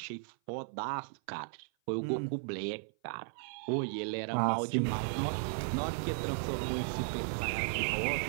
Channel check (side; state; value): left; silent; 54 dB below the other